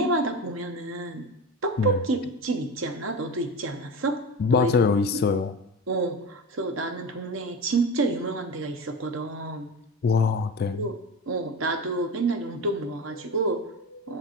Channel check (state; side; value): normal; both; correlation 0.27